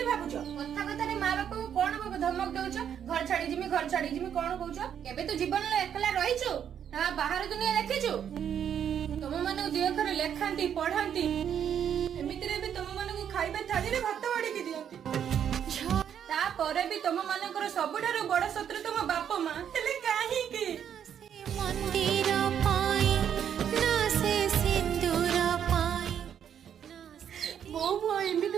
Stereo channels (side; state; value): left; quieter; 8.9 dB